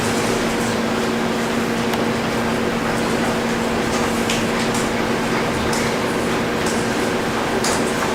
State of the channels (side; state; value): both; identical; correlation 1.00